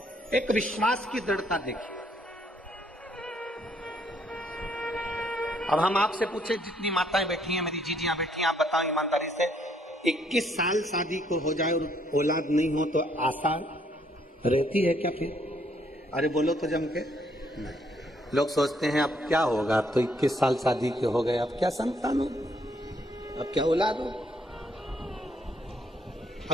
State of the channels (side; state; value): both; normal; correlation 0.69